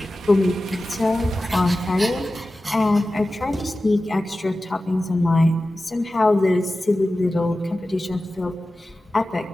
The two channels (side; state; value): both; normal; correlation 0.95